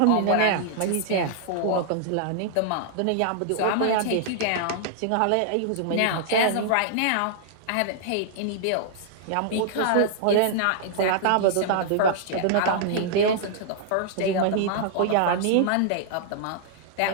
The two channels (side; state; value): both; different; correlation -0.01